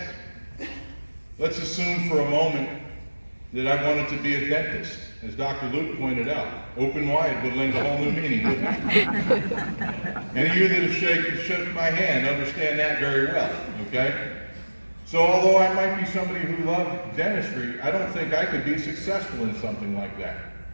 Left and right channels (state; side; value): inverted; both; correlation -1.00